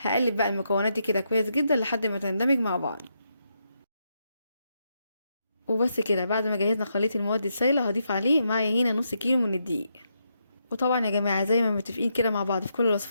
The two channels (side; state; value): both; inverted; correlation -0.81